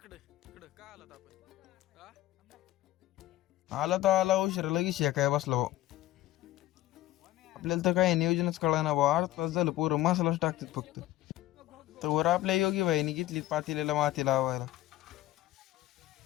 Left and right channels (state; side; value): quieter; right; 15.2 dB